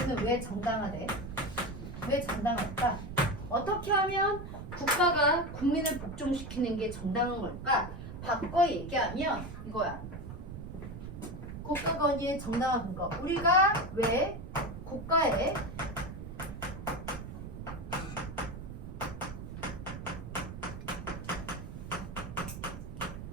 왜 정당화돼? 왜 정당할까? 어떻게 하면 국가가 국민을 복종시키는 게 정당한 걸까? 바꿔 얘기하면 이거야. 국가 권위의 정당한 근거. 우리가 왜 국가에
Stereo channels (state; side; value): noise; right; rumble, 9 dB below the sound